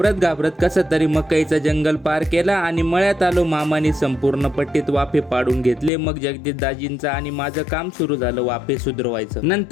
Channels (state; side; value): drops out; right; at 5.9 s